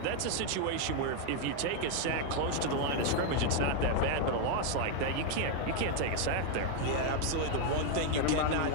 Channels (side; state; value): both; different; correlation 0.01